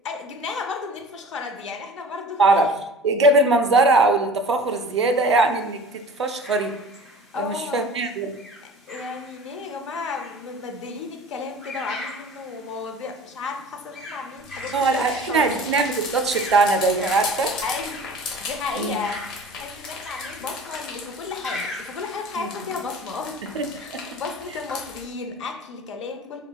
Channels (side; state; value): both; normal; correlation 0.41